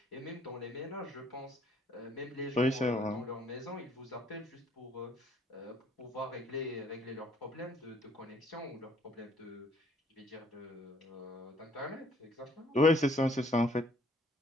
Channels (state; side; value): normal; both; correlation 0.62